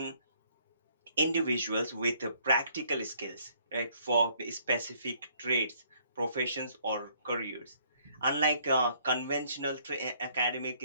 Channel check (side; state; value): both; inverted; correlation -0.64